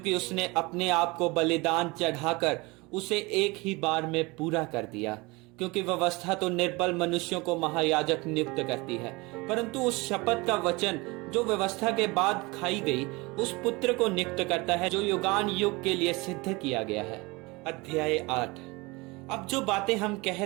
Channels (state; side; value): quieter; left; 24.5 dB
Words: उसने अपने आप को बलिदान चढ़ाकर उसे एक ही बार में पूरा कर दिया। क्योंकि व्यवस्था तो निर्बल मनुष्यों को महायाजक नियुक्त करती है, परंतु उस शपथ का वचन जो व्यवस्था के बाद खाई गई, उस पुत्र को नियुक्त करता है जो युगान युग के लिए सिद्ध किया गया है। अध्याय 8। अब जो बातें हम कह